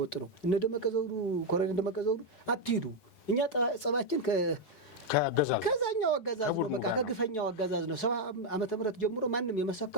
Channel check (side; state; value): right; late; 9.4 ms